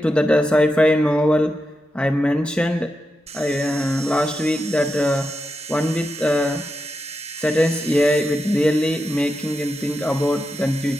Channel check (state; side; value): normal; both; correlation 0.88